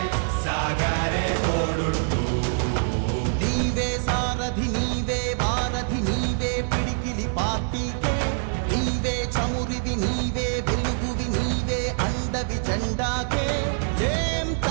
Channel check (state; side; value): silent; left; 60 dB below the other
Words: సాగరే తోడుంటూ నీవే సారథి నీవే వారధి నీవే పిడికిలి పార్టీకే నీవే చమురివి నీవే వెలుగువి నీవే అండవి జెండాకే ఏం